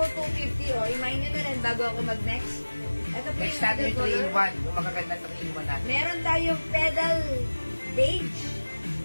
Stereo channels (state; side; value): inverted; both; correlation -1.00